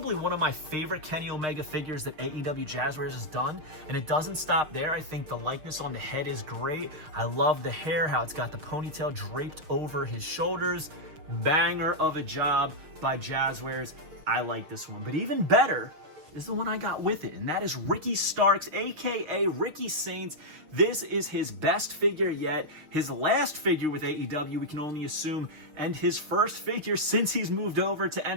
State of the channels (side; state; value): left; late; 6.5 ms